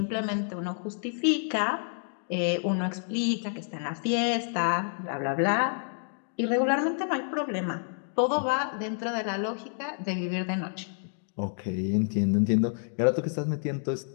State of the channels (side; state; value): right; silent; digital silence